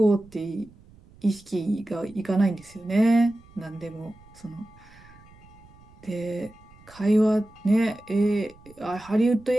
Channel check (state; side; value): noise; right; rumble, 25 dB below the sound